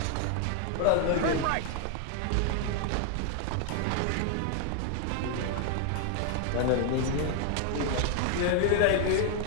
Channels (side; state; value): both; different; correlation 0.00